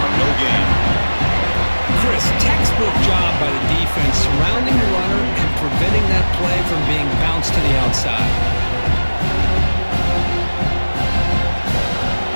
for no gain. Chris, textbook job by the defense surrounding the runner and preventing that play from being bounced to the outside.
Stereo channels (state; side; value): inverted; both; correlation -1.00